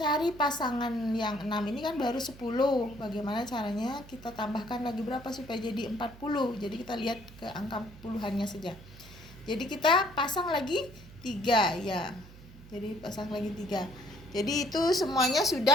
pasangan yang 6 ini kan baru 10. Bagaimana caranya? Kita tambahkan lagi berapa supaya jadi 40. Jadi kita lihat ke angka puluhannya saja. Jadi kita pasang lagi 3 ya. Jadi pasang lagi 3. Jadi itu semuanya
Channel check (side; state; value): right; noise; hum, 19 dB below the sound